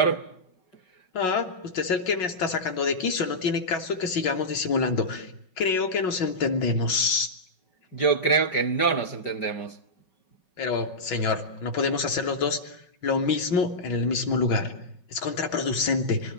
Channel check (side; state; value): right; late; 5.5 ms